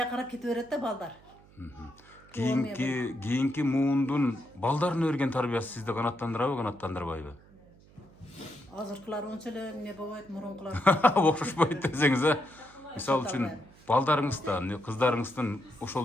qarab ketaveradi da balдар. Kийинки муундун балдарын өрген тарбиясы сизди канаттандырабы, канаттандырбайбы? Азыркылар онча эле эмне болбойт, мурункулар. Окшошпойт десеңиз, мисалы үчүн балдарыңыздан, кыздарыңыздын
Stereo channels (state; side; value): noise; right; hum, 25 dB below the sound